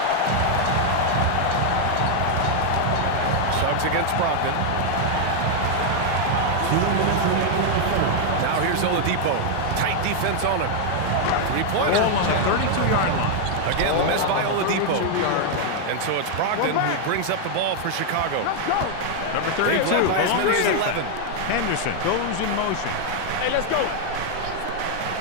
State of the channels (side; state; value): both; different; correlation 0.00